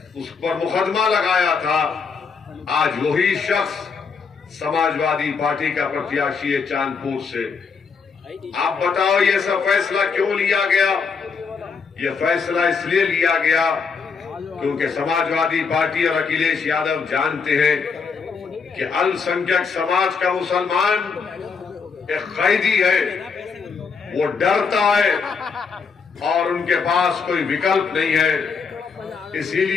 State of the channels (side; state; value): right; quieter; 5.4 dB